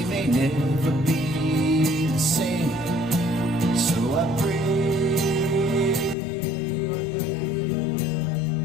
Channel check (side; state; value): right; drops out; at 6.2 s